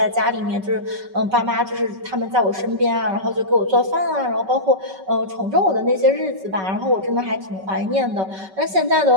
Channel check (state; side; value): late; left; 5.3 ms